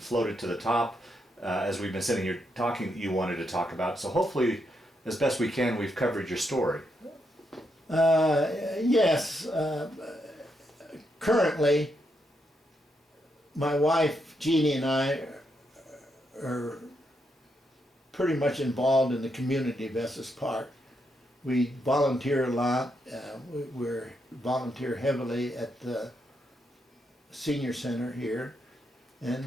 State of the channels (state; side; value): normal; both; correlation 0.80